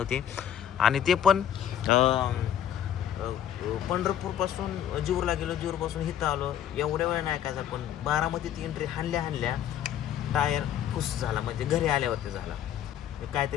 आणि ते पण पंढरपूरपासून जीवरला गेलो, जीवरपासून इथं आलो, एवढ्या वेळ नाही काय. पण बारामतीत एंट्री हाणल्या टायर खुश झाला. म्हणजे घरी आल्यावरती झाला.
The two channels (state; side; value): quieter; right; 10.1 dB